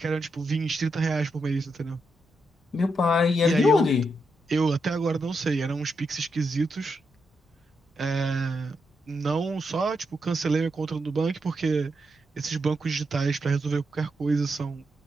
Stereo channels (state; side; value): normal; both; correlation 0.83